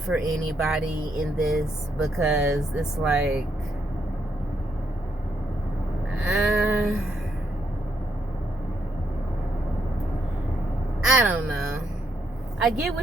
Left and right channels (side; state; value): both; normal; correlation 0.76